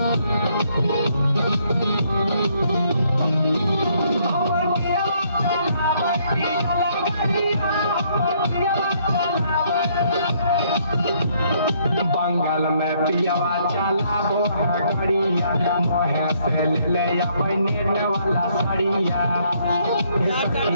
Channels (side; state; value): both; inverted; correlation -0.68